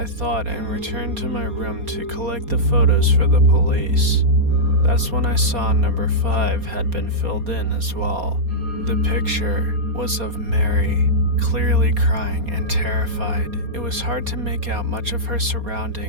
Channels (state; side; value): late; left; 4.2 ms